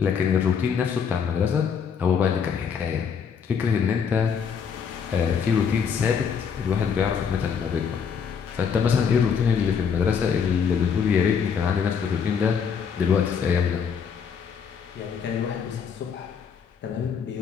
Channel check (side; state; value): right; quieter; 6.8 dB